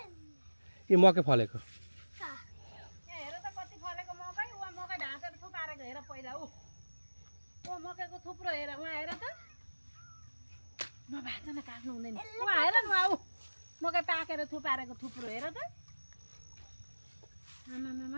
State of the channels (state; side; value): inverted; both; correlation -1.00